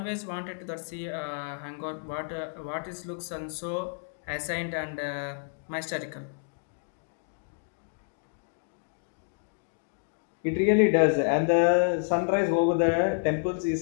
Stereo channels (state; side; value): silent; right; digital silence